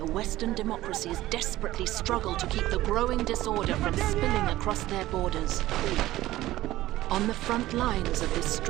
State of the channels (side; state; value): left; quieter; 16.0 dB